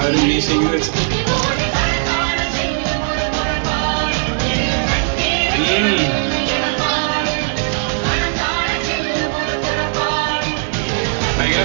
ഒരു മീശ ഇങ്ങനെ വെച്ചിട്ട് ഭയങ്കര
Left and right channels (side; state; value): left; silent; 58 dB below the other